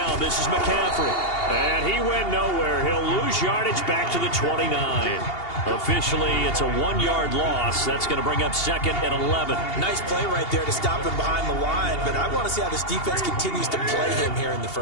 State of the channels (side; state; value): right; late; 2.8 ms